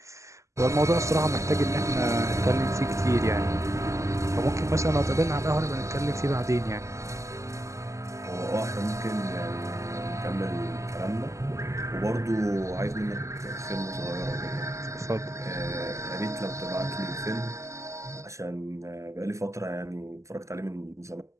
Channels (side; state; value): left; late; 0.15 ms